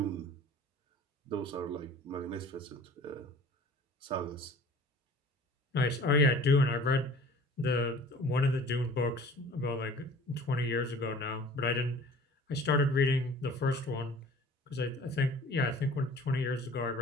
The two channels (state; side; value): normal; both; correlation 0.47